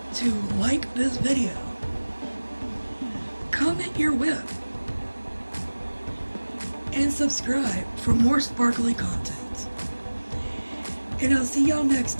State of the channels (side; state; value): both; inverted; correlation -1.00